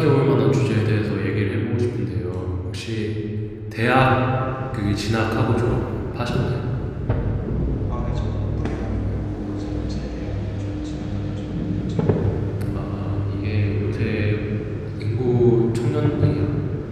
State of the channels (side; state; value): both; identical; correlation 1.00